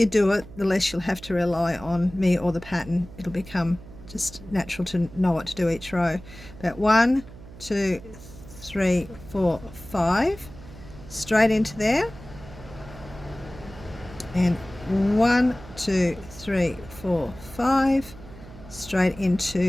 do it, the less you'll have to rely on me or the pattern. It'll become just natural to know what to do each row. But 1, 2, 3, 4, 5, straight into there, and 1, 2, 3, 4, 5, straight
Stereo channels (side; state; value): right; noise; hum, 17 dB below the sound